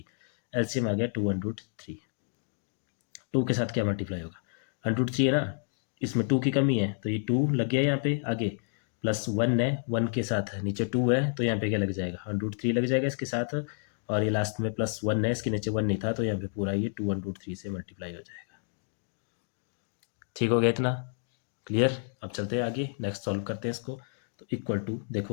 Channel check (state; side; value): silent; right; 58 dB below the other